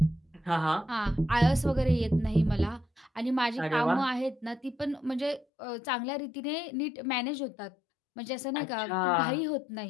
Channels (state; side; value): drops out; right; at 5.5 s